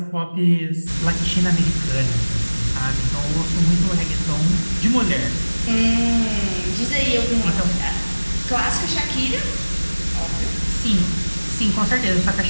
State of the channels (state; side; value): inverted; both; correlation -1.00